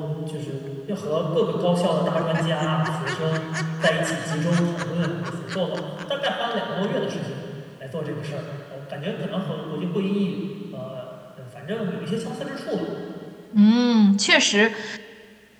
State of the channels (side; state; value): both; identical; correlation 1.00